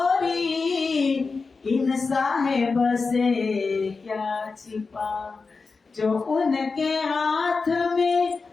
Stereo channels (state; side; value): quieter; right; 4.4 dB